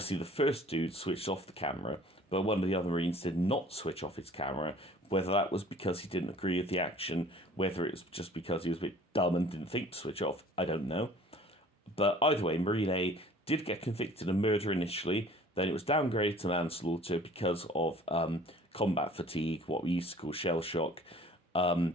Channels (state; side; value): normal; both; correlation 0.50